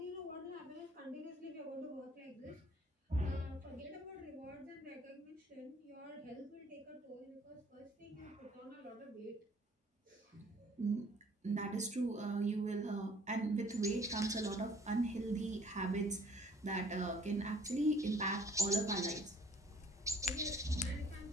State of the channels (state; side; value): normal; both; correlation 0.57